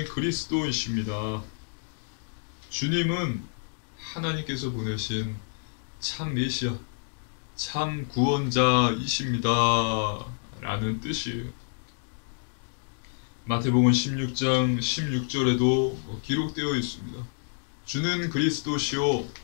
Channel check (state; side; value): silent; right; digital silence